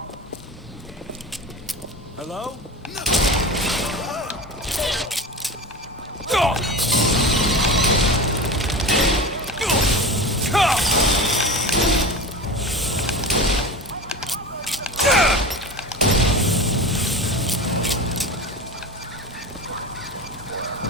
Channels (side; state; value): both; normal; correlation 0.30